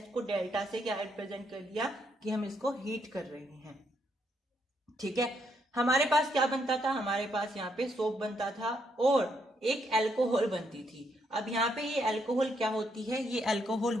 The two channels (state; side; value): normal; both; correlation 0.75